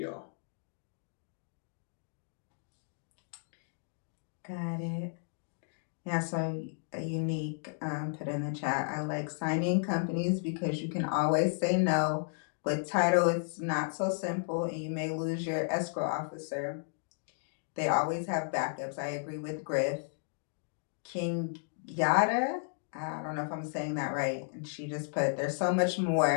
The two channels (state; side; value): silent; right; digital silence